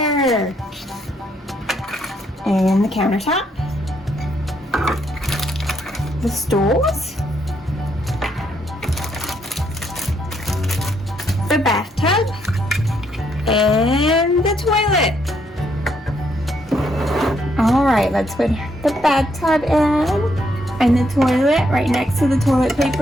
And the countertop. The stools. The bathtub. And the toilet. Alright, let's put the bathtub in. And the toilet right next to the toilet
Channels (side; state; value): both; normal; correlation 0.74